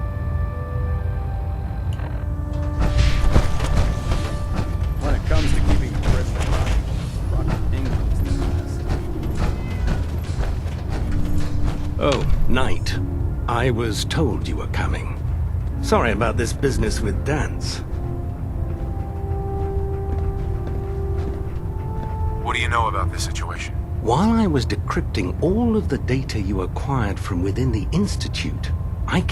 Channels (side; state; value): both; identical; correlation 1.00